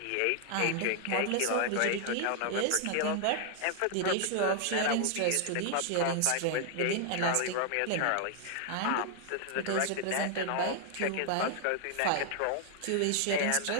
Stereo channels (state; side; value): different; both; correlation 0.00